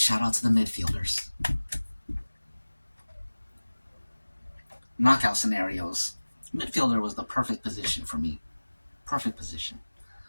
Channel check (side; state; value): both; inverted; correlation -1.00